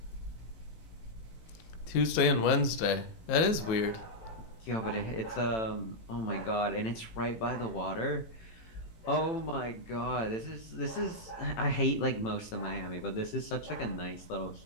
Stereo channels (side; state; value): right; late; 19 ms